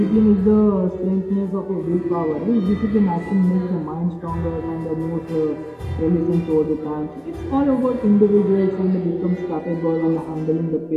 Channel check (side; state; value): both; identical; correlation 1.00